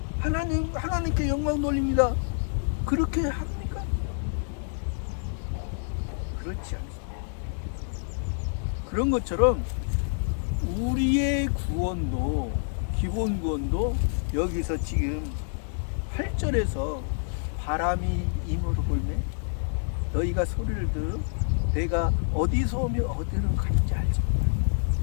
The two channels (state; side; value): silent; right; digital silence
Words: 하나님께 영광 돌립니다. 그렇게 합니까? 그렇지 않습니다. 그런 것처럼 우리의 구원도, 기본 구원도 여기서 지금 8절에서 바람이 임으로 불매 너희가 소리를 들어 내가 어디서 오며 어디로 가는지 알지 못하라.